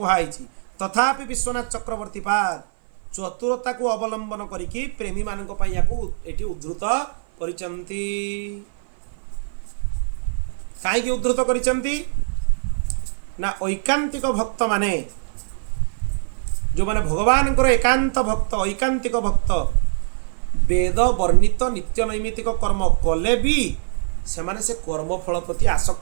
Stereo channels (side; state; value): left; silent; 57 dB below the other